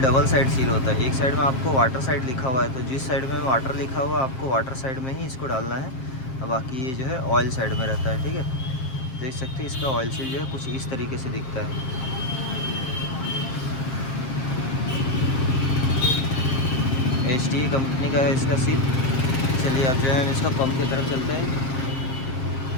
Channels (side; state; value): right; late; 7.5 ms